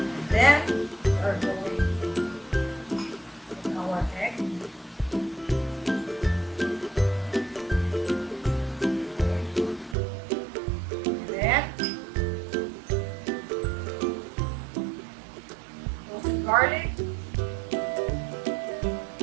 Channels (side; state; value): left; drops out; at 10.0 s